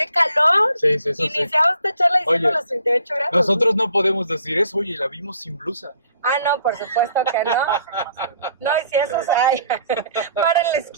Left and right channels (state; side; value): inverted; both; correlation -0.60